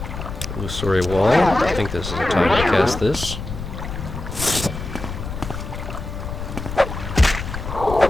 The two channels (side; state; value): left; noise; rumble, 7 dB below the sound